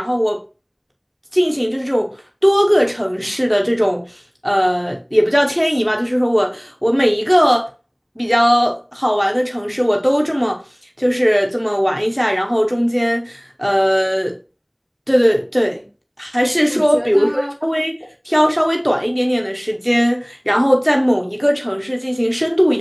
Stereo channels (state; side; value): identical; both; correlation 1.00